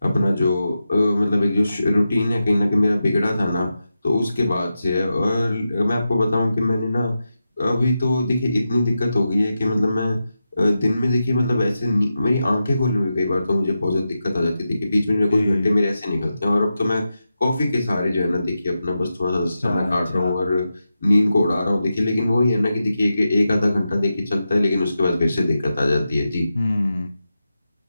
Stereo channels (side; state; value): both; inverted; correlation -0.90